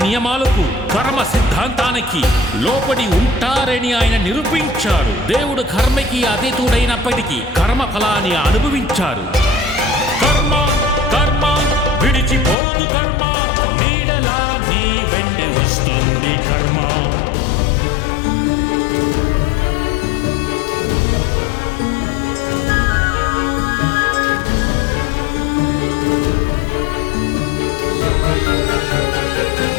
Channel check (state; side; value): drops out; right; at 12.6 s